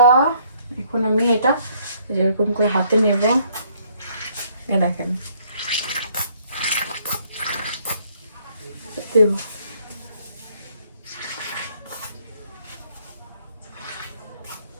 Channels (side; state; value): both; inverted; correlation -0.65